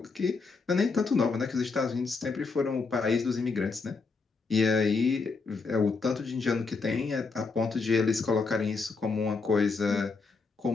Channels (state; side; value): quieter; right; 4.4 dB